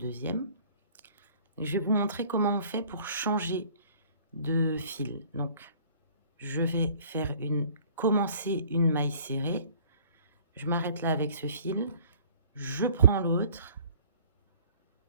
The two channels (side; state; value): both; inverted; correlation -0.52